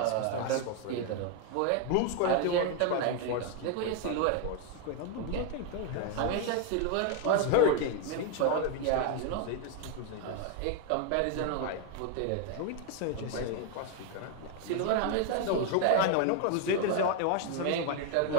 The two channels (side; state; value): both; different; correlation 0.01